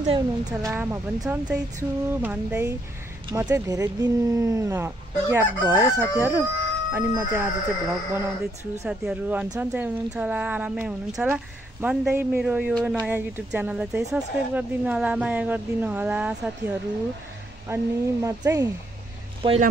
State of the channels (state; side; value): normal; both; correlation 0.74